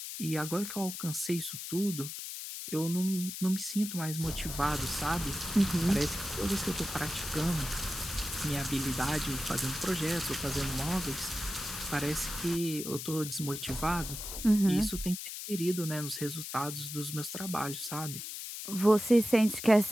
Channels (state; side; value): noise; left; hiss, 7 dB below the sound